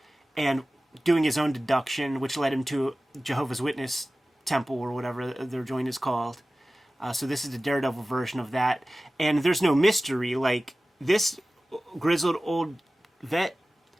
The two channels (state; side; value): normal; both; correlation 0.97